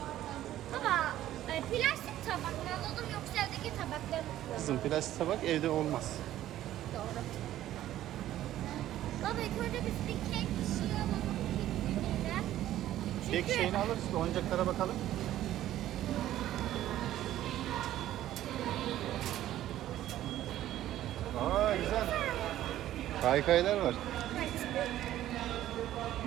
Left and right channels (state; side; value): quieter; left; 13.2 dB